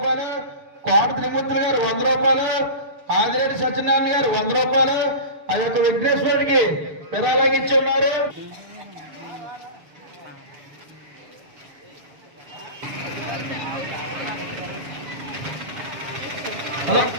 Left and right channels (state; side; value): late; left; 7.0 ms